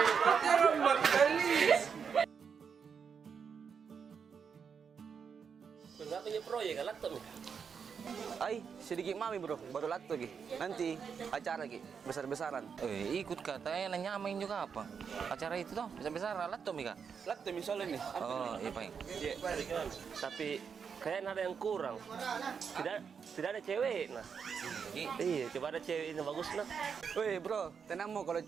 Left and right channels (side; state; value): left; quieter; 6.5 dB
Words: Terima kasih. Enggak punya proyek kan laptop nih. Ay, sedikit mami bro, baru lato lagi. Nanti acara lagi, besar-besaran. Ikut katanya nyamain juga apa? Acara itu toh, besar-besaran laptop Mika. Lato misalnya nih. Oh, iya Pak. Tapi kayaknya ada yang kurang. Tidak ada cewek nah. Iya, coba ada cewek ini bagus nah. Weh bro, tenang mau kalau